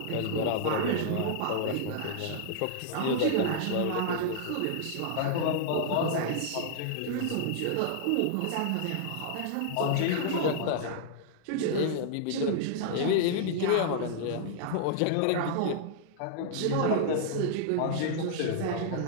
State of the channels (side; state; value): both; different; correlation -0.01